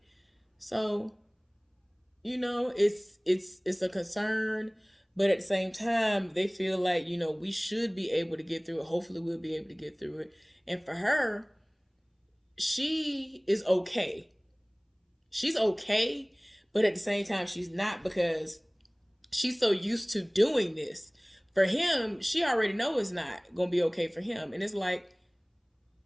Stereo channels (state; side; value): identical; both; correlation 1.00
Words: So, you know, it's a concern But at the same time, they feel like, we should be able to get through it. Hopefully, we'll be able to get through it. And for her, she is okay. She's okay, but at the same time, she's not, because she's so used to doing this. For him, she already know it's not gonna be okay for him, and it's like,